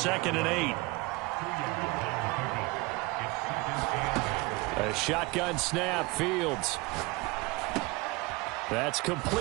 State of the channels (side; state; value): left; quieter; 23.7 dB